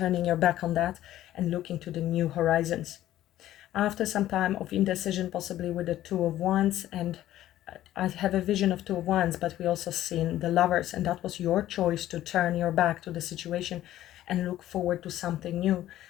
your back on that and looking to the new horizons. After some time of indecision, possibly with the Two of Wands, and I have a vision of Two of Wands, but we also seen the Lovers, and that was your choice to turn your back to the situation and look forward to something new.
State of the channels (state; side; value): quieter; right; 13.5 dB